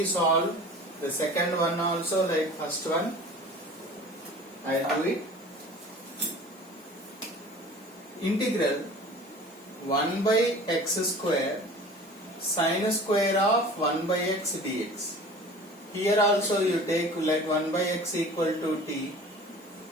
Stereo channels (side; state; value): both; normal; correlation 0.42